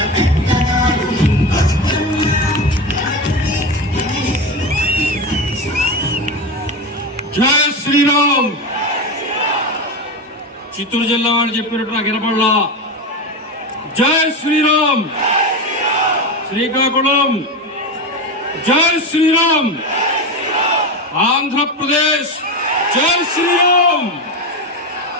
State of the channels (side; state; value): both; normal; correlation 0.20